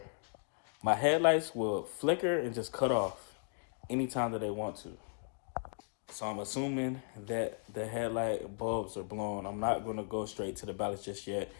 my headlights will flicker and just cut off anytime that they want to. So I'm assuming that the headlight bulbs are blown. I'm not going to go straight to the ballast just yet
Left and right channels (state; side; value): silent; right; 54 dB below the other